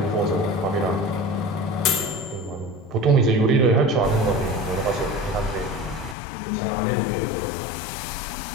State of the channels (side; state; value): right; drops out; at 6.2 s